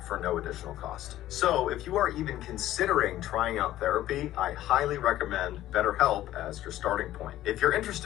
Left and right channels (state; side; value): quieter; right; 13.9 dB